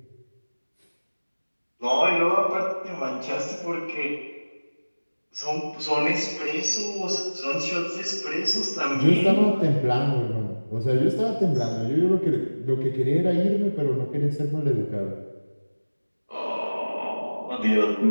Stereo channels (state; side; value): inverted; both; correlation -1.00